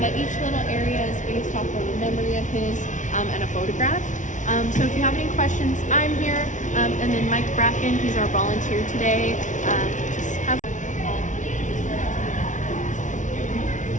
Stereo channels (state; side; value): late; right; 0.37 ms